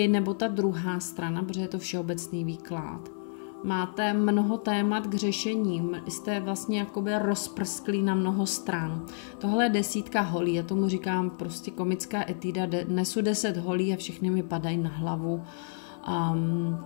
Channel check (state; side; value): silent; right; 58 dB below the other